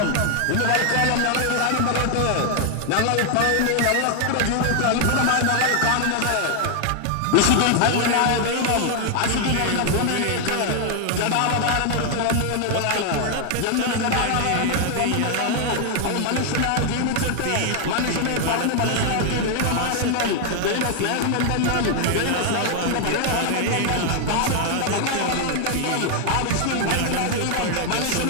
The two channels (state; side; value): different; both; correlation 0.00